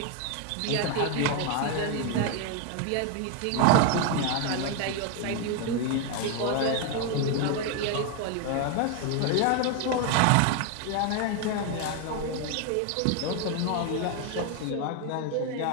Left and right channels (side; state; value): both; different; correlation 0.01